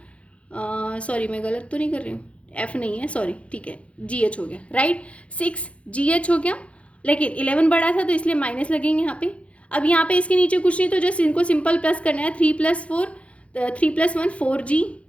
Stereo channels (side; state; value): right; late; 0.062 ms